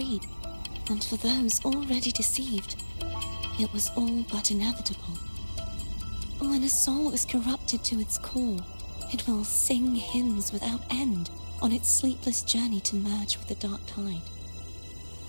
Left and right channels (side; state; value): both; inverted; correlation -1.00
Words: and for those already deceived, it was all but inevitable. When a soul is corrupted to its core, it will sing hymns without end on its sleepless journey to merge with the dark tide.